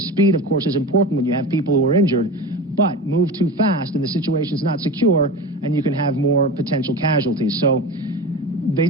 speed, of course, is important when you have people who are injured, but move too fast and the situation's not secure and you can have more potential casualties. So they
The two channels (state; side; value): normal; both; correlation 0.29